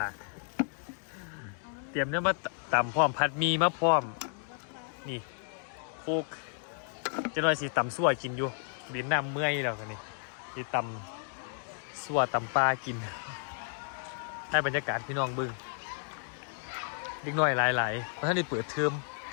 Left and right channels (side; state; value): right; silent; 56 dB below the other